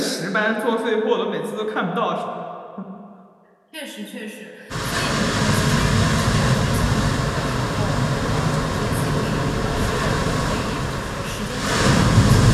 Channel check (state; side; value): identical; both; correlation 1.00